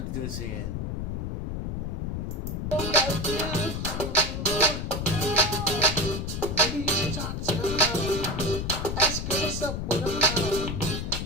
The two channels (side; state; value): left; noise; rumble, 3 dB below the sound